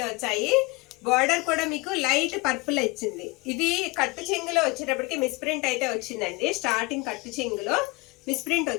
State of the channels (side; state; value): right; quieter; 25.4 dB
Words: వచ్చాయి. బార్డర్ కూడా మీకు లైట్ పర్పుల్ వచ్చింది. ఇది కట్టు చెంగులో వచ్చేటప్పటికి మిస్ ప్రింట్ అయితే వచ్చిందండి. స్టార్టింగ్ కట్టు చెంగులో మిస్ప్రింట్